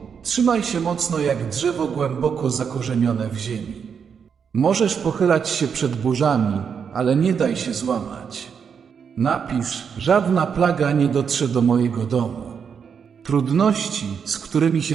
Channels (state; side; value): quieter; left; 6.8 dB